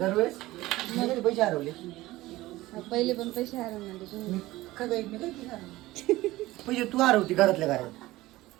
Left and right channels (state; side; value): quieter; left; 17.9 dB